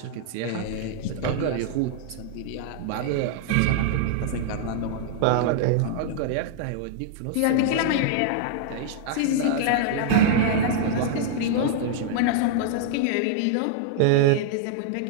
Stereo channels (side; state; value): both; different; correlation -0.01